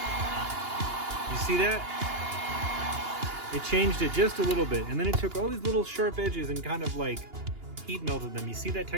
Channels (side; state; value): left; late; 2.8 ms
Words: You see that? It changed it just a little bit, and then it took all these little sharp edges and kind of like heat melted them. You see that